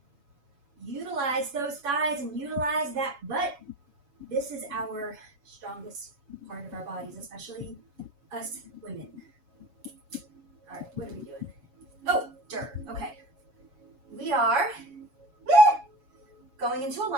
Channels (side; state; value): left; late; 7.1 ms